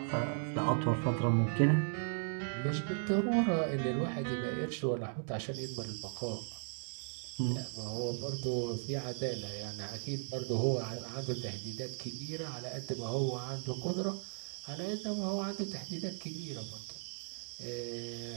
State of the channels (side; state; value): left; silent; digital silence